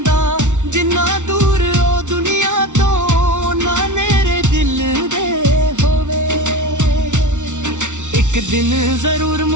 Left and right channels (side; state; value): left; late; 0.85 ms